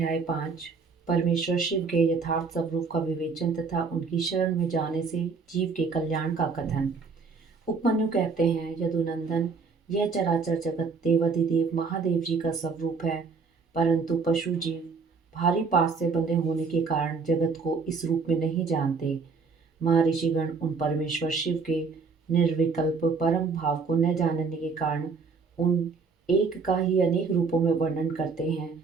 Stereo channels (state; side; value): quieter; left; 4.8 dB